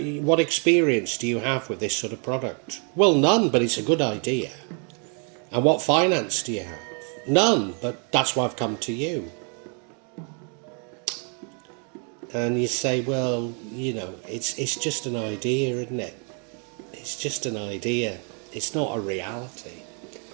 experience do you have with this sort of product? Well, none, but it's a good idea. And what finance do you have? None, but that's why I've come to you. And you say, well, it's just an idea, isn't it? It's just an idea. It's not a reality.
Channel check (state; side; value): quieter; left; 39.3 dB